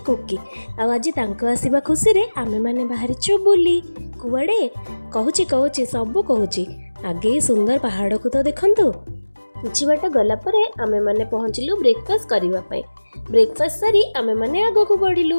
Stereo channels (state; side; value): inverted; both; correlation -1.00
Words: कुकी। आज आसवा खुशी रे आमे माने बाहरीचु बुली कुआडे कहूची कहूची सब कहूची। आगे सुंदर पहाड़ को तो देखंतु। किछि बाट गला परे आमे माने पहुँचलु ब्रेकफास्ट करने। ब्रेकफास्ट सारी आमे माने आग को